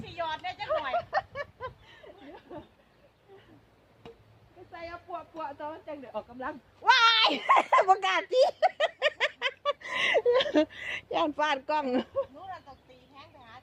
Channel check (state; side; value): identical; both; correlation 1.00